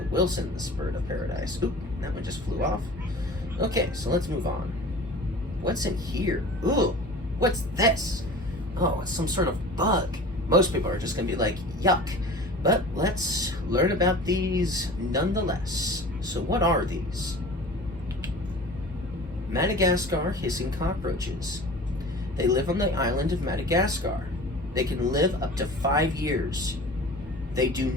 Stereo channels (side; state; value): both; normal; correlation 0.39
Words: Wilson's bird of paradise. Oop, that one just flew off. Okay, so let's move on. What's in here? Ooh, what's this? Oh, it's some sort of bug. Most people are just gonna be like, yuck. But let's learn about these nonetheless. So what are these? Madagascar hissing cockroaches. They live on the island of Madagascar. They can live up to 5 years. They do